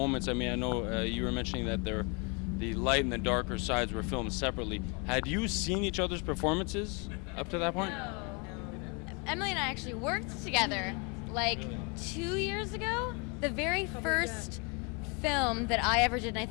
I mean, I know you were mentioning that the light and the darker sides were filmed separately. Had you seen each other's performances up to that point? No. Emily and I actually worked together like 2 years ago. The very first film that I ever did, and I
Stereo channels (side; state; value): right; quieter; 32.7 dB